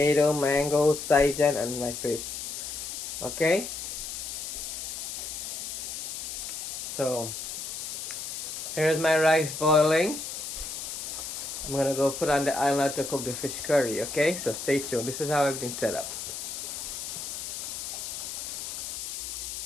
mango, saijan, and my fish. Okay? So, here's my rice boiling. I'm gonna go put on the island to cook the fish curry, okay? So stay tuned. This is how everything's set up.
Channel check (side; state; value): left; noise; hiss, 6 dB below the sound